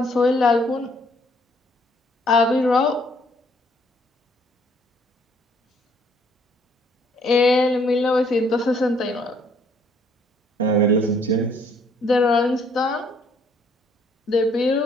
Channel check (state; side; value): normal; both; correlation 0.64